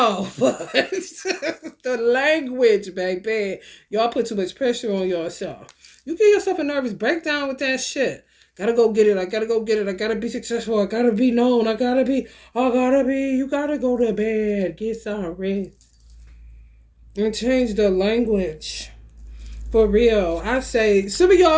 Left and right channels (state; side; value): identical; both; correlation 1.00